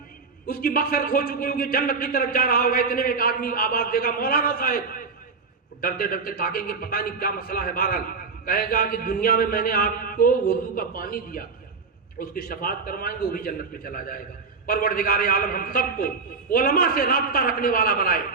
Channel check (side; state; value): left; quieter; 4.7 dB